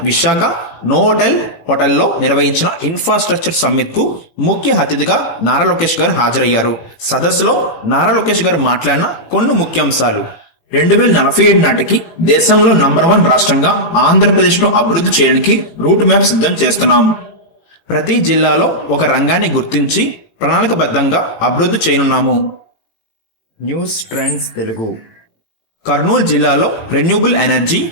విశాఖ నోవోటెల్ హోటల్లో నిర్వహించిన ఇన్ఫ్రాస్ట్రక్చర్ సమ్మిట్ కు ముఖ్య అతిథిగా నారా లోకేష్ గారు హాజరయ్యారు. సదస్సులో నారా లోకేష్ గారు మాట్లాడిన కొన్ని ముఖ్యాంశాలు: 2047 నాటికి దేశంలో నంబర్ 1 రాష్ట్రంగా ఆంధ్రప్రదేశ్ను అభివృద్ధి చేయడానికి రూట్ మ్యాప్ సిద్ధం చేస్తున్నాం. ప్రతి జిల్లాలో ఒక రంగాన్ని గుర్తించి ప్రణాళికబద్ధంగా అభివృద్ధి చేయనున్నాము. News trends Telugu. కర్నూలు జిల్లాలో రెన్యూబుల్ ఎనర్జీ,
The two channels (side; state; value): right; late; 18 ms